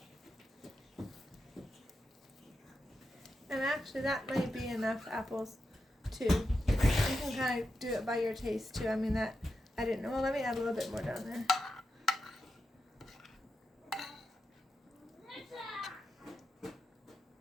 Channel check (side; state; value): both; normal; correlation 0.88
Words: And actually, that may be enough apples, too. You can kind of do it by your taste, too. I mean, that, I didn't know. Well, let me add a little bit more down there.